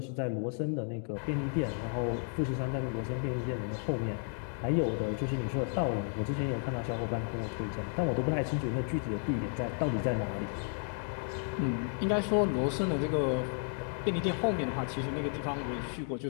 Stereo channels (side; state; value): right; silent; 56 dB below the other